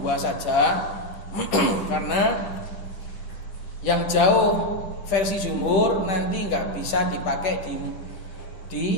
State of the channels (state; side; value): late; right; 10 ms